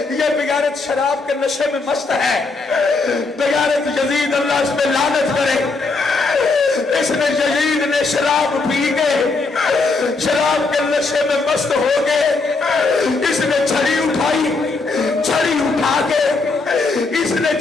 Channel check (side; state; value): right; quieter; 3.9 dB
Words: بغیرت شراب کے نشے میں مست ہے. بغیرت یزید اللہ اس پہ لعنت کرے. اس نے یزید نے شراب پی کے شراب کے نشے میں مست ہو گئے. اس نے چھڑی اٹھائی, چھڑی اٹھا کے اس نے